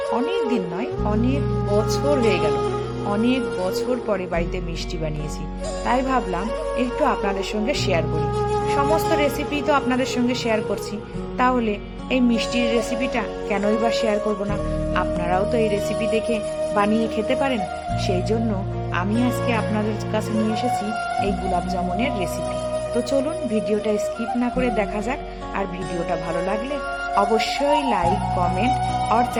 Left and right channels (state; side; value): identical; both; correlation 1.00